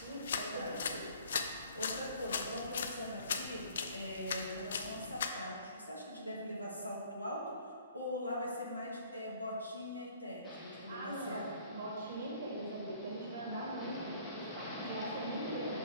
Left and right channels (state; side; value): inverted; both; correlation -0.56